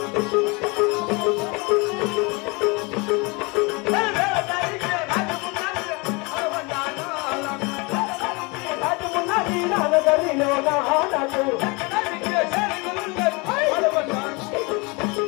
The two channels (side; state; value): right; quieter; 27.9 dB